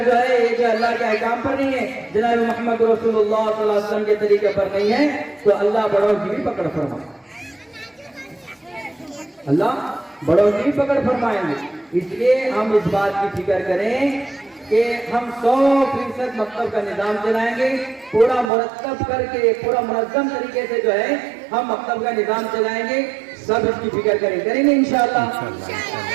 جو ہے یہ جو اللہ کے احکام پر نہیں ہے، جناب محمد رسول اللہ صلی اللہ علیہ وسلم کے طریقے پر نہیں ہے، تو اللہ بڑوں کی بھی پکڑ فرمائے، اللہ بڑوں کی بھی پکڑ فرمائیں گے۔ اس لیے ہم اس بات کی فکر کریں کہ ہم 100% مکتب کا نظام چلائیں گے، پورا مرتب کر کے، پورا منظم طریقے سے جو ہے ہم مکتب کا نظام چلائیں گے۔ سب اس کی فکر کریں گے انشاءاللہ،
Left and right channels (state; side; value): drops out; left; at 18.5 s